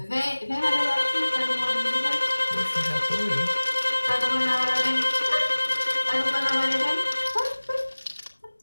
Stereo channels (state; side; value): inverted; both; correlation -1.00